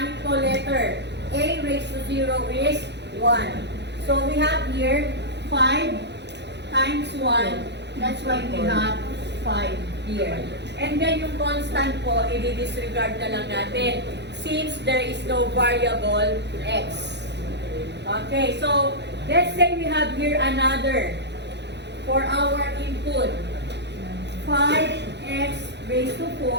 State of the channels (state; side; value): late; left; 0.50 ms